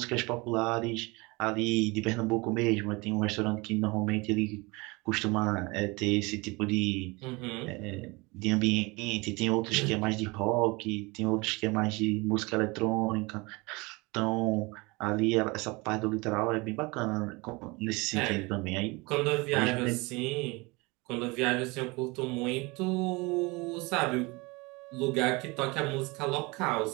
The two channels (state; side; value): quieter; left; 25.5 dB